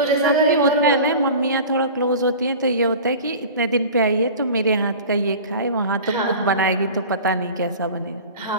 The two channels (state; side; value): inverted; both; correlation -0.37